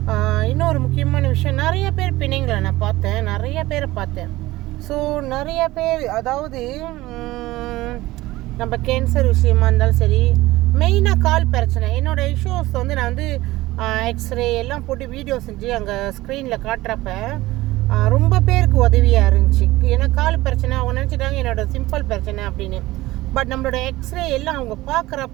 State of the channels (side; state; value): left; quieter; 18.1 dB